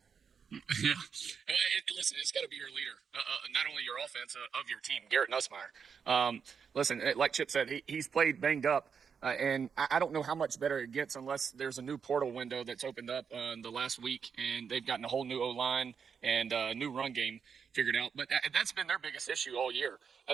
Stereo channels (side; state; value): left; quieter; 6.5 dB